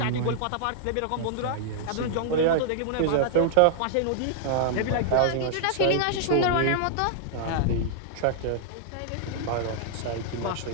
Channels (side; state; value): both; different; correlation -0.01